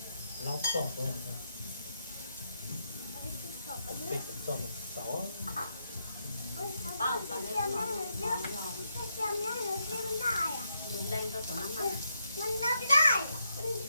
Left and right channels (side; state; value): both; inverted; correlation -0.80